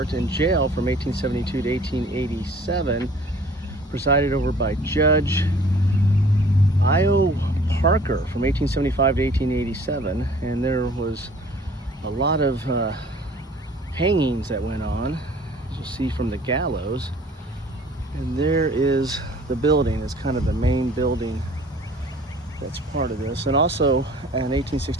and jail from 1872 to 1887, presided over by Judge I.O. Parker from 1875 to 1887, and there was a lot of hangings that went on, as you'll see from the gallows. And there is the building. It's kind of the main building that's part of this. And also in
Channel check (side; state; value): both; normal; correlation 0.51